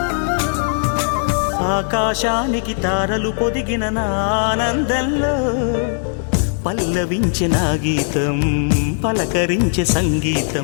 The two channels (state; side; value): silent; right; digital silence